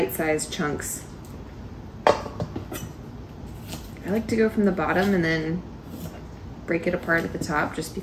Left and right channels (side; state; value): both; identical; correlation 1.00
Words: chunks. I like to go from the bottom and then break it apart at the top, just